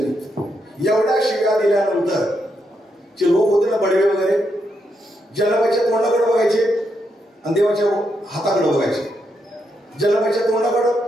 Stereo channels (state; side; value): normal; both; correlation 0.81